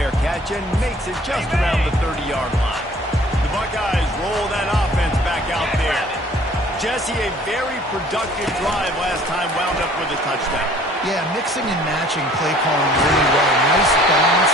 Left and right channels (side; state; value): both; normal; correlation 0.53